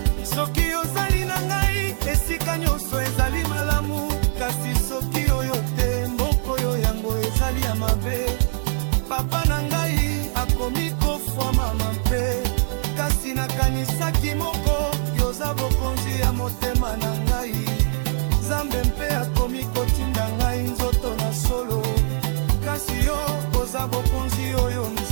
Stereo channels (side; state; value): left; silent; digital silence